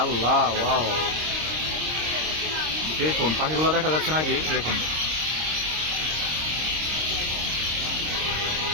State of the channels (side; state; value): left; late; 26 ms